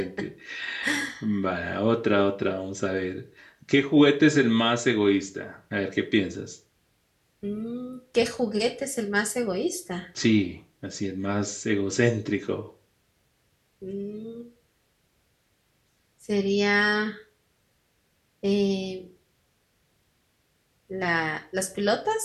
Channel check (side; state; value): both; identical; correlation 1.00